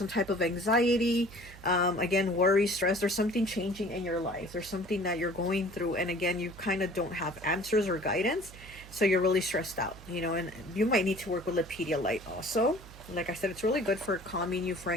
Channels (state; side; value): noise; right; hum, 18 dB below the sound